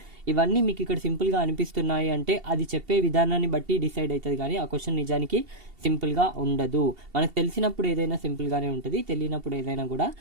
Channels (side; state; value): left; late; 2.7 ms